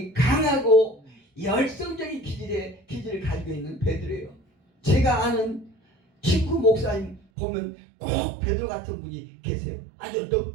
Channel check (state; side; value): drops out; left; at 7.2 s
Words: 강하고 열성적인 기질을 가지고 있는 베드로예요. 제가 아는 친구 목사님 보면 꼭 베드로 같은 분이 계세요. 아주